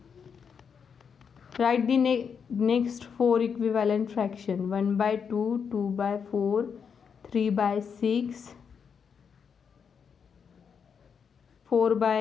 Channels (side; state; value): right; quieter; 6.6 dB